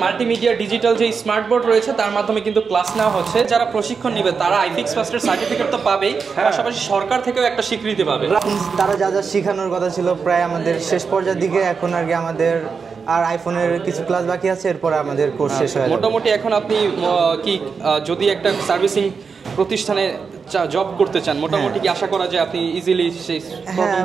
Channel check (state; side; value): quieter; left; 5.5 dB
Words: মাল্টিমিডিয়া ডিজিটাল যে স্মার্ট বোর্ড রয়েছে তার মাধ্যমে কিন্তু ক্লাস নেওয়া হচ্ছে। যারা প্রশিক্ষণ নেবে তারা আইফিক্স ফার্স্টের সার্টিফিকেট তো পাবেই, পাশাপাশি সরকার থেকেও একটা স্বীকৃতি পাবে। তারা যা যা শেখানোর কথা ছিল প্রায় আমাদের শেষ পর্যায়ের দিকে, এখন আর কি আমাদের আর আইফোনের কিছু ক্লাস বাকি আছে, এরপরে আমাদের কোর্স শেষ হয়ে যাবে। মোটামুটি এখন আপনি কি যদি একটা সার্ভিসিং প্রতিষ্ঠানে জব করতে চান মোটামুটি কি আশা করা যায় আপনি ইজিলি সেই